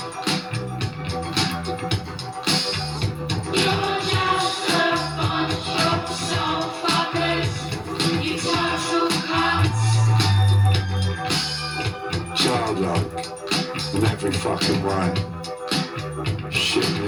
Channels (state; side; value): identical; both; correlation 1.00